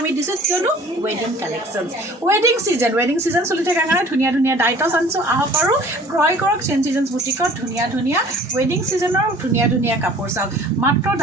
দিছোঁ কিয়নো ৱেডিং কালেকশ্যন ৱেডিং ছিজন চলি থকাৰ কাৰণে ধুনীয়া ধুনীয়া ডাইটছ আনিছোঁ আহক আৰু ক্ৰয় কৰক চেঞ্জ চিজন বুটিকত ধুনীয়া ধুনীয়া ৱেডিং ছিজনৰ ধুনীয়া ধুনীয়া কাপোৰ চাওক মাত্ৰ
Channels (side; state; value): both; normal; correlation 0.49